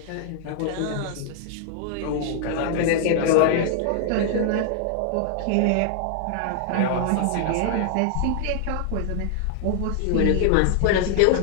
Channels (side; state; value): both; different; correlation 0.00